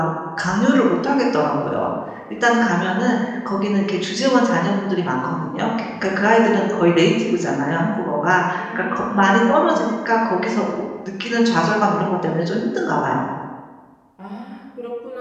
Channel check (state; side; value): identical; both; correlation 1.00